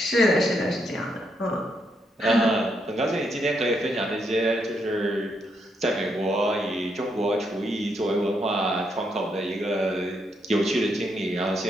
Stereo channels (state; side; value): normal; both; correlation 0.78